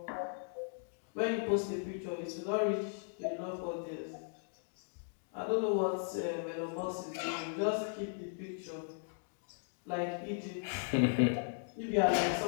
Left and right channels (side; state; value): right; silent; digital silence